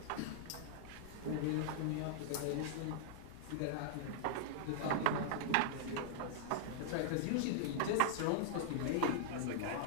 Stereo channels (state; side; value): different; both; correlation -0.01